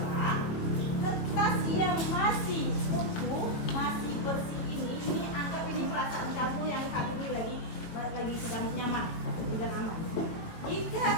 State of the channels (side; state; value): right; late; 18 ms